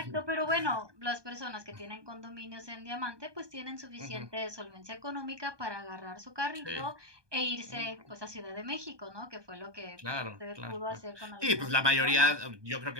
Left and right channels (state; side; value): late; left; 1.2 ms